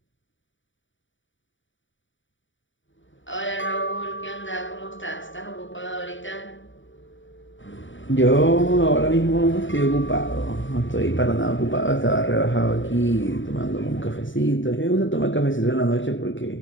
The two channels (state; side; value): late; right; 0.56 ms